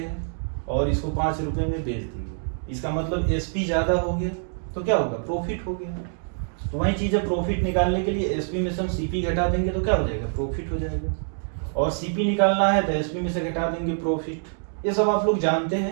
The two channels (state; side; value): silent; left; digital silence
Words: और इसको 5 रुपये में बेच दिए। इसका मतलब एसपी ज़्यादा हो गया तो क्या होगा? प्रॉफिट हो गया। तो वही चीज़ है, प्रॉफिट निकालने के लिए एसपी में से हम सीपी घटा देंगे तो क्या हो जाएगा? प्रॉफिट हो जाएगा। और सीपी निकालना है तो एसपी में से घटा देंगे, प्रॉफिट। ये सब आप लोग जानते